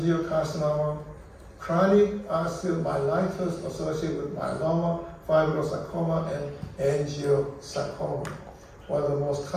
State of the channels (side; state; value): both; identical; correlation 1.00